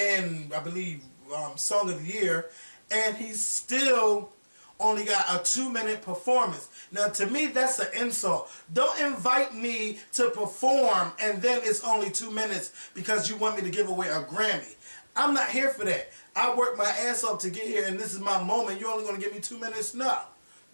I believe, Song of the Year. And he's still only got a 2-minute performance. Now, to me, that's an insult. Don't invite me to perform and then it's only 2 minutes because you want me to give away a Grammy. I'm not here for that. I worked my ass off to get here and this is my moment. You're only going to give me 2 minutes? No.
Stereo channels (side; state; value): both; inverted; correlation -1.00